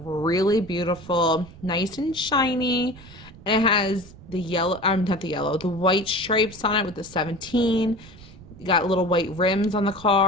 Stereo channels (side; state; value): right; noise; rumble, 20 dB below the sound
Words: beautiful. Nice and shiny. And it has the yellow, not the yellow, the white stripes on it with the 17. You got little white rims on the